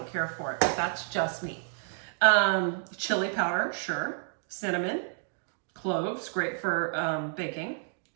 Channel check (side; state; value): left; silent; digital silence